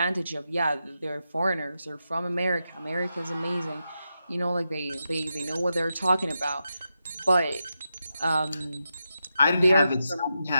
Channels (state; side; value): inverted; both; correlation -0.88